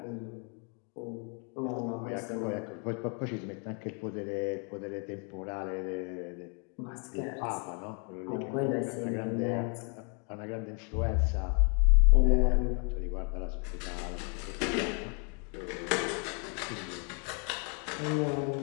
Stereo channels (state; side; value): quieter; right; 38.3 dB